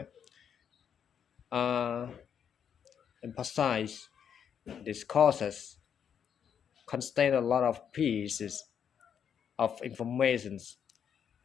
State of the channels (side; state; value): right; quieter; 8.1 dB